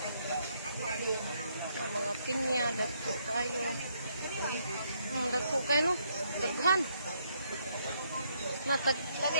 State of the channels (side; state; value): both; inverted; correlation -0.73